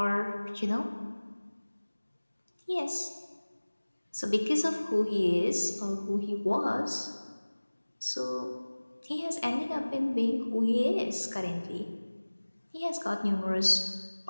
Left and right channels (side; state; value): both; inverted; correlation -1.00